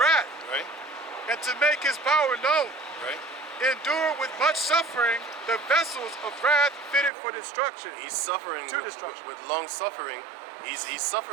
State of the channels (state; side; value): drops out; left; at 7.1 s